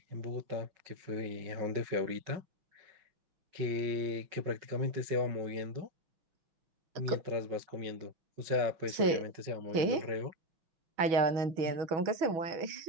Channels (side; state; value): left; late; 6.2 ms